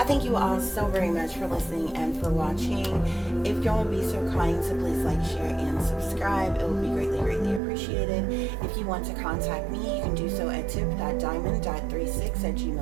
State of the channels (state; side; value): drops out; left; at 7.6 s